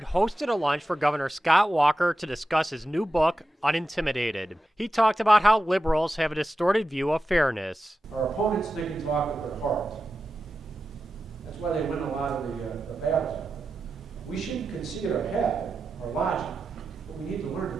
hosted a lunch for Governor Scott Walker to discuss his new book, Unintimidated. He talked about how liberals have a distorted view of fairness. Our opponents think and talk with their heart. That's why they win a lot of the battles. We shouldn't concede our head, our logic, but we need to learn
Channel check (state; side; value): normal; both; correlation 0.91